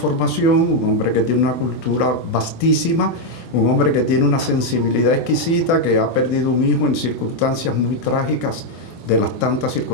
un hombre que tiene una cultura vastísima, un hombre que tiene una sensibilidad exquisita, que ha perdido un hijo en circunstancias muy trágicas, de las tantas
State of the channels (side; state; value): right; late; 24 ms